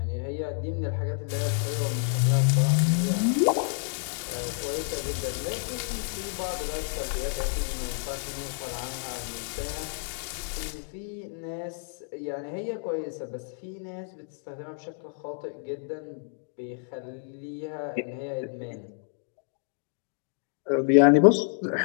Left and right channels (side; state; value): right; silent; 58 dB below the other